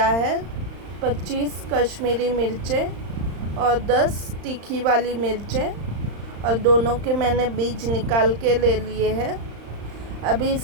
है 25 कश्मीरी मिर्चें और 10 तीखी वाली मिर्चें, और दोनों के मैंने बीज निकाल के ले लिए हैं। अभी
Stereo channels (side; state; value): left; late; 35 ms